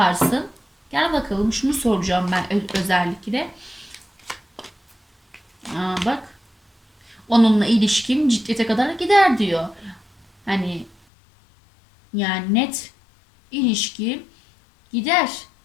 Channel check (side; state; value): right; drops out; at 11.0 s